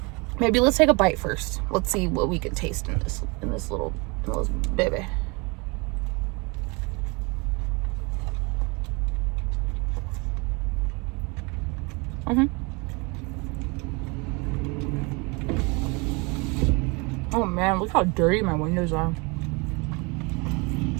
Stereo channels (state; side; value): quieter; left; 28.8 dB